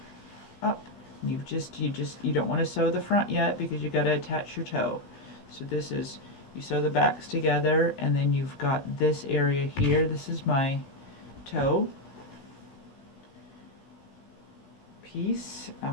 up. You don't want to sew the front yet because you got to attach your toe. So this is, you sew the backs together, and then you've got this area here. This is my toe piece,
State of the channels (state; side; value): late; right; 16 ms